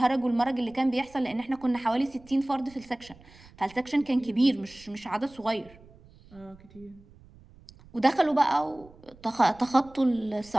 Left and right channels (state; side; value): noise; right; rumble, 24 dB below the sound